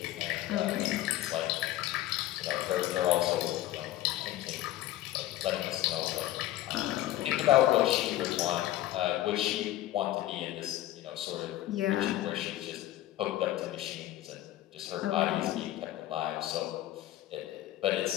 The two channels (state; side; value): quieter; right; 14.6 dB